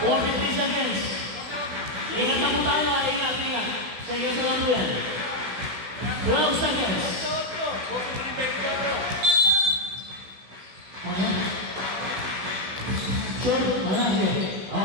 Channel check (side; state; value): left; late; 16 ms